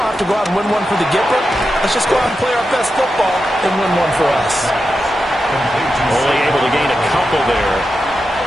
have to go out and win one for the Gipper. Let's just go out and play our best football and win one for us. Only able to gain a couple there,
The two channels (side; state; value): both; normal; correlation 0.89